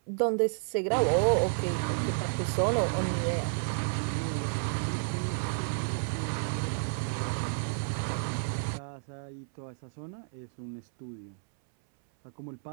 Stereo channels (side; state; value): left; silent; 57 dB below the other